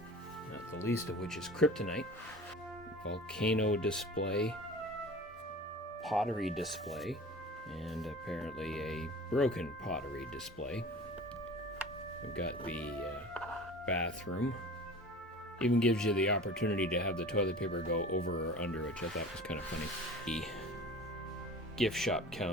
not the least of which is kryptonite, volcano display, pottery display, and apparently a broken pottery display. We've got the bathroom. Even gives you the opportunity to have the toilet paper go over or under, which I thought was kind of funny. The gift shop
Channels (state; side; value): normal; both; correlation 0.39